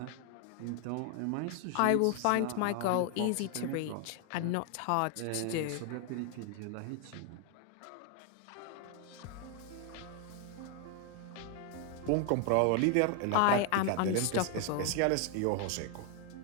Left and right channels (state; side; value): different; both; correlation 0.00